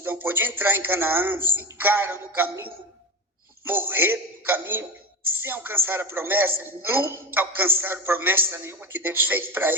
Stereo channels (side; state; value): both; normal; correlation 0.21